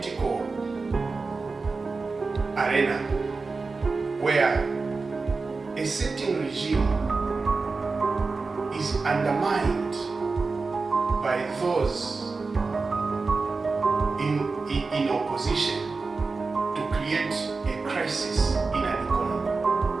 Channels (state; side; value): quieter; left; 4.1 dB